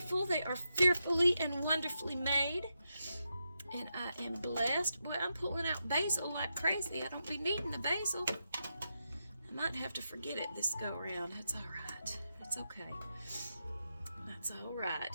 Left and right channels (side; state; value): both; inverted; correlation -0.86